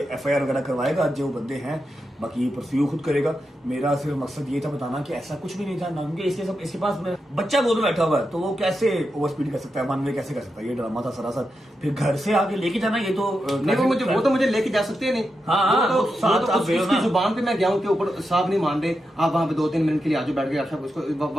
एफआईआर वगैरह करवाएगा जो बंदे हैं, बाकी ये परस्यू खुद करेगा। मेरा सिर्फ मकसद ये था बताना कि ऐसा कुछ भी नहीं था ना, क्योंकि इसके पास बच्चा गोद में बैठा हुआ है, तो वो कैसे ओवर स्पीड कर सकता है, वन वे कैसे कर सकता है? ये ड्रामा था सरासर। फिर घर से आके लेके जाना, ये तो नहीं, वो तो मुझे लेके जा सकते नहीं। उसकी जुबान पे मैं गया हूँ कि ऊपर साहब नहीं मान रहे, आप वहाँ पे 2-3 मिनट के लिए आजो बैठ गए, उसको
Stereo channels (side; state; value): both; normal; correlation 0.87